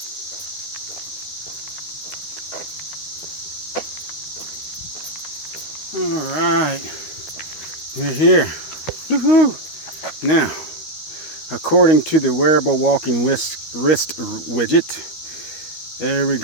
All right, we're here. Woohoo! Now, according to the wearable walking wrist widget, there we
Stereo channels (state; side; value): late; right; 13 ms